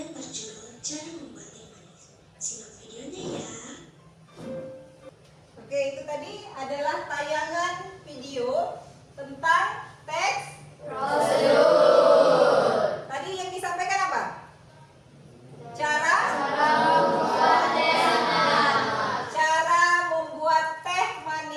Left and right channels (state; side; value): identical; both; correlation 1.00